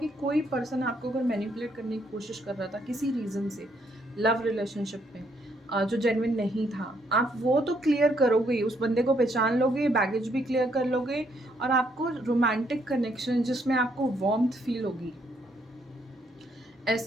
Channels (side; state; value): both; normal; correlation 0.72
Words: कोई पर्सन आपको अगर मैनिपुलेट करने की कोशिश कर रहा था किसी रीज़न से लव रिलेशनशिप में, जो जेन्युइन नहीं था, आप वो तो क्लियर करोगे ही, उस बंदे को पहचान लोगे, बैगेज भी क्लियर कर लोगे, और आपको रोमांटिक कनेक्शन जिसमें आपको वार्मथ फील होगी,